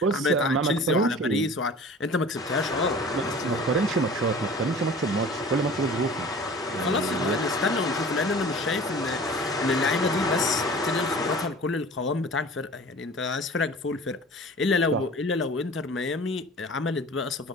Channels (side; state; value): both; normal; correlation 0.42